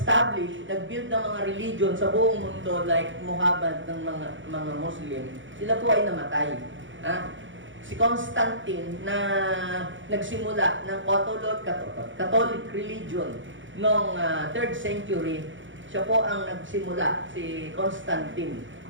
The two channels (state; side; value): late; left; 0.56 ms